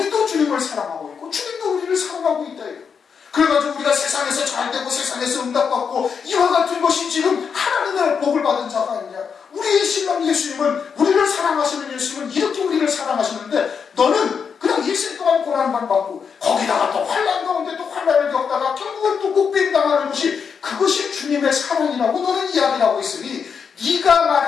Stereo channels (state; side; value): quieter; right; 6.4 dB